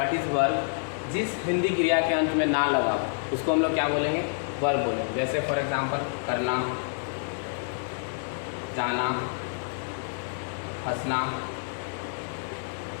is verb. जिस हिंदी क्रिया के अंत में ना लगा उसको हम लोग क्या बोलेंगे? वर्ब बोलेंगे. जैसे फॉर एग्जांपल करना, जाना, हंसना.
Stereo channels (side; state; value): right; silent; digital silence